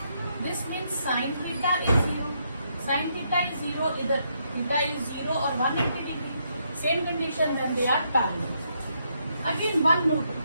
This means sin theta is 0. Sin theta is 0, either theta is 0 or 180 degree. Same condition when they are parallel. Again, one more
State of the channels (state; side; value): inverted; both; correlation -0.76